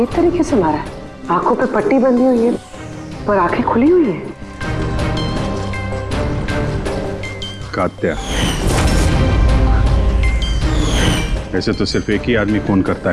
तरीके से मारा है। आंखों पे पट्टी बंधी हुई है पर आंखें खुली हुई है। कात्या, वैसे तो सिर्फ एक ही आदमी खून करता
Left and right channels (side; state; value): both; identical; correlation 1.00